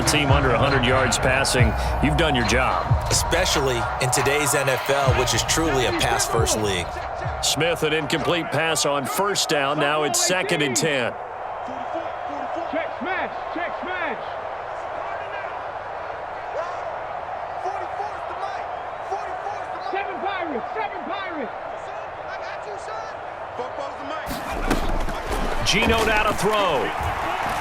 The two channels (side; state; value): both; identical; correlation 1.00